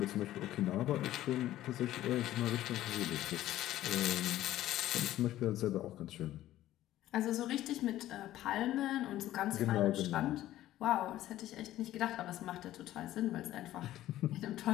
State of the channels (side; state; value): right; quieter; 14.1 dB